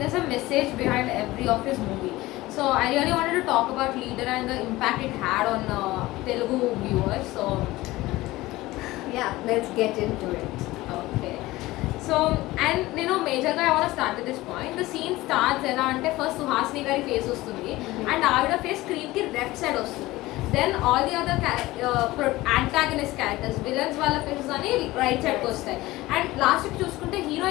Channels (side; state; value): right; quieter; 18.5 dB